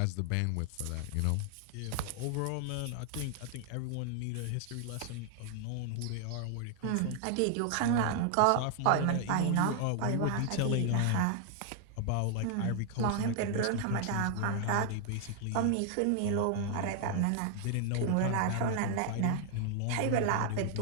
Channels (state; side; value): different; both; correlation 0.00